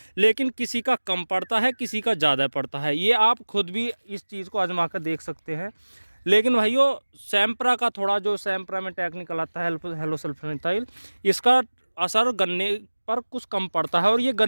लेकिन किसी का कम पड़ता है, किसी का ज़्यादा पड़ता है। ये आप खुद भी इस चीज़ को आजमा कर देख सकते हैं। लेकिन भाइयों सैम्प्रा का थोड़ा, जो सैम्प्रा में टेक्निकल आता है हेलो सल्फोनाल, इसका असर गन्ने पर कुछ कम पड़ता है। और ये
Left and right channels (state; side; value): inverted; both; correlation -1.00